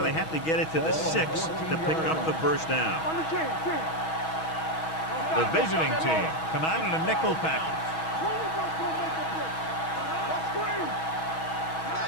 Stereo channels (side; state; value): right; late; 6.2 ms